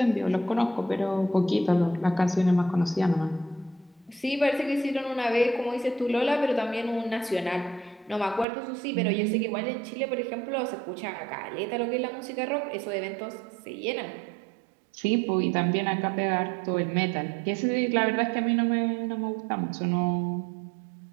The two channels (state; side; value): drops out; left; at 8.5 s